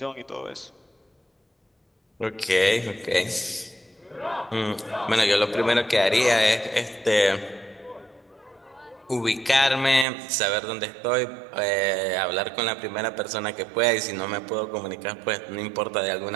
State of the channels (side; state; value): left; drops out; at 10.1 s